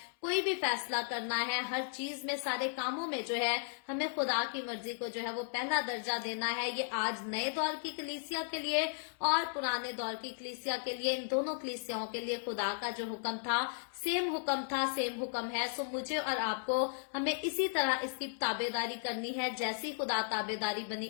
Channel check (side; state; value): right; silent; 54 dB below the other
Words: कोई भी फैसला करना है, हर चीज में, सारे कामों में जो है हमें खुदा की मर्जी को जो है वो पहला दर्जा देना है। ये आज नए दौर की कलीसिया के लिए और पुराने दौर की कलीसिया के लिए, इन दोनों कलीसियाओं के लिए खुदा का जो हुक्म था, सेम हुक्म है। सो मुझे और आपको हमें इसी तरह इसकी ताबेदारी करनी है। जैसी खुदा ताबेदारी बनी